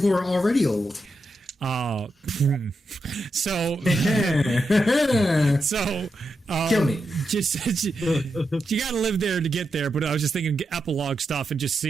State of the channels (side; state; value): both; normal; correlation 0.86